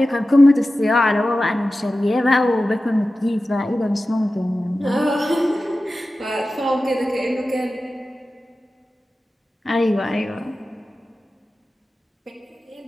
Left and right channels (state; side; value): normal; both; correlation 0.94